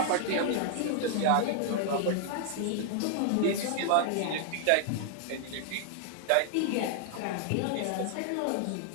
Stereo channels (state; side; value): different; both; correlation 0.00